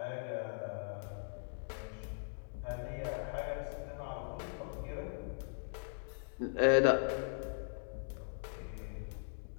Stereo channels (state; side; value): silent; right; digital silence